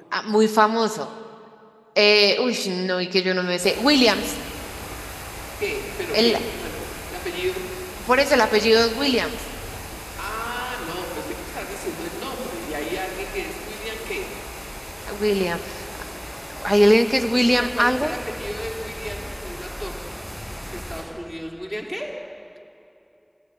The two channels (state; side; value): identical; both; correlation 1.00